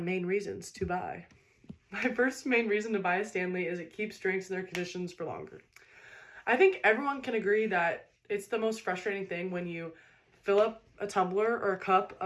reasons to buy. My first main reason to buy a Stanley is it keeps drinks in their conditions for longer. I think everyone can agree that it's the most frustrating thing when you fill up a tumbler or a cup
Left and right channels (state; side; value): identical; both; correlation 1.00